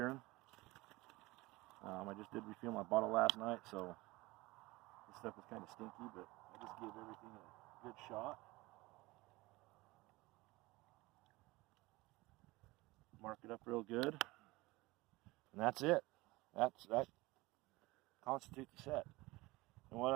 I just did refill my bottle last night, so this stuff was kind of stinky, but I just gave everything a good shot. Mark it up real good, and that's it. That constitutes the set. And what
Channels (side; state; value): left; quieter; 21.2 dB